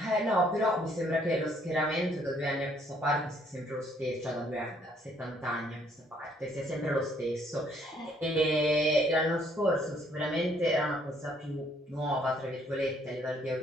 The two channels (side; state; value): both; normal; correlation 0.65